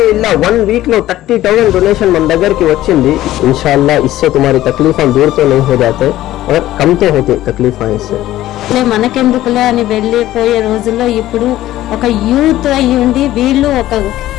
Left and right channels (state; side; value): quieter; right; 14.6 dB